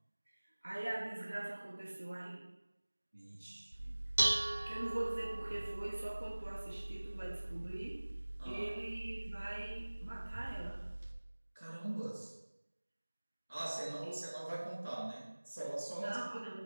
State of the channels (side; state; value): both; inverted; correlation -1.00